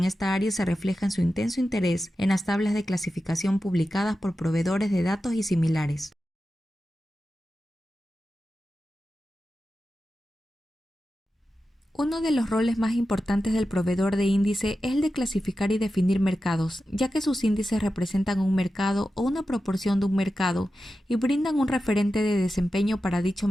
esta área se refleja en su intenso interés en las tablas de clasificación publicadas por proveedores de datos y similares. Uno de los roles más importantes del proveedor de índice es el de clasificar y definir mercados, ya que sus índices representan un mercado o una proporción de un mercado y brindan un referente de desempeño para dicho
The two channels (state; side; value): normal; both; correlation 0.92